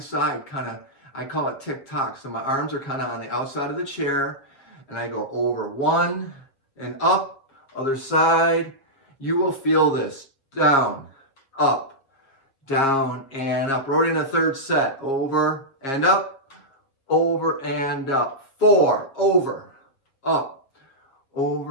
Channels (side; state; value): right; late; 7.2 ms